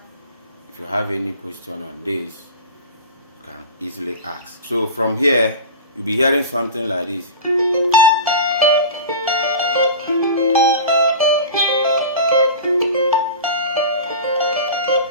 If you have any question on this, you can easily ask. So from here, you'll be hearing something like this.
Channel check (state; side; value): inverted; both; correlation -0.31